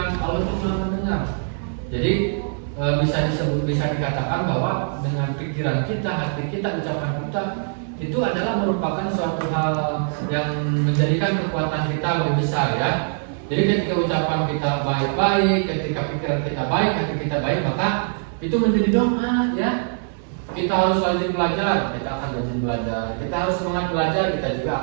Allah itu maha mendengar. Jadi bisa dikatakan bahwa dengan pikiran kita, hati kita, ucapan kita itu adalah merupakan suatu hal yang menjadikan kekuatan kita lebih besar, ya. Jadi ketika ucapan kita baik-baik, ketika pikiran kita baik, hati kita baik, maka itu menjadi doa, ya. Kita harus rajin belajar, kita akan rajin belajar. Kita harus semangat belajar, kita juga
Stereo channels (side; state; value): left; silent; digital silence